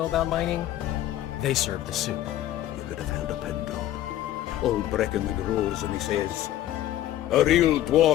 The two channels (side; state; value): right; quieter; 13.3 dB